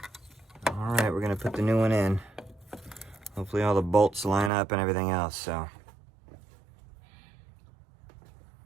All right, we're going to put the new one in. Hopefully all the bolts line up and everything else, so.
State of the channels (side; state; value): left; drops out; at 4.5 s